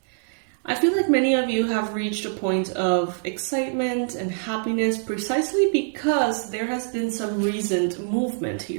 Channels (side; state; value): left; silent; digital silence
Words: I feel like many of you have reached a point of excitement and happiness precisely because there has been some recent movement